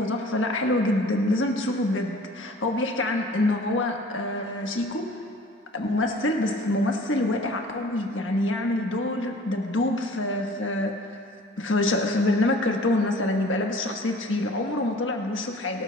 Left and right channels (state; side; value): normal; both; correlation 0.48